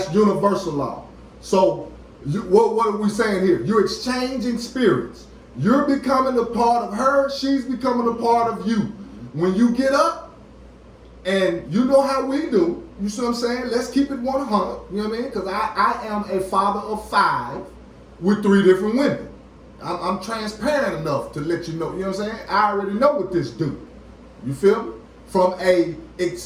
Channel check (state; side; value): identical; both; correlation 1.00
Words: universal law. So what are we saying here? You're exchanging spirits. You're becoming a part of her. She's becoming a part of you. When you get up, and you know how we do, you see what I'm saying? Let's keep it 100, you know what I mean? Because I am a father of 5 with 3 different women. I'm transparent enough to let you know, you know what I'm saying? I already know what this do. You feel me? From a